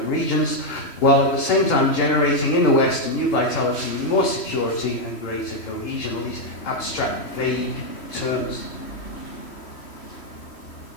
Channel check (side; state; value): right; late; 3.1 ms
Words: regions, while at the same time generating in the West a new vitality, more security and greater cohesion. These abstract, vague terms.